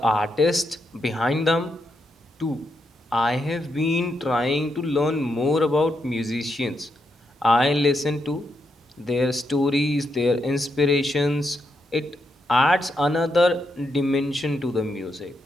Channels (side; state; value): both; normal; correlation 0.82